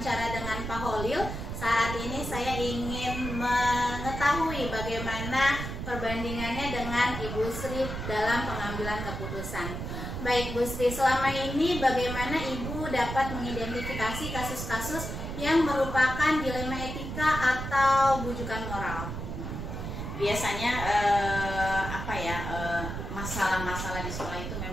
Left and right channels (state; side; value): noise; right; rumble, 6 dB below the sound